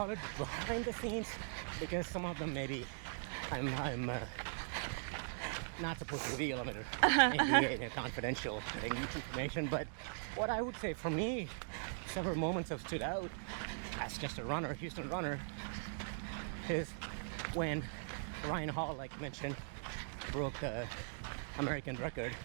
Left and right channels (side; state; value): left; silent; digital silence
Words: it behind the scenes, because some of them maybe I'm not supposed to reveal. I'm under NDA and confidential information. But what I would say for me, several moments have stood out as just a runner, Houston runner, is when Ryan Hall, like I mentioned, broke the American record,